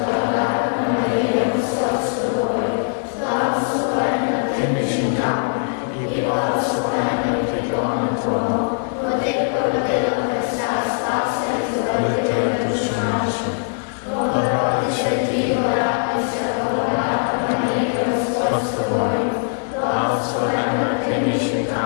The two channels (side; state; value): right; silent; 65 dB below the other